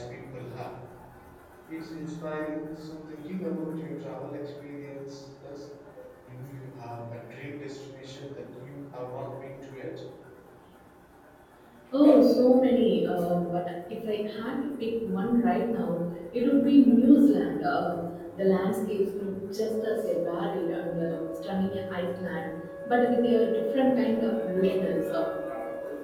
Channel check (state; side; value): identical; both; correlation 1.00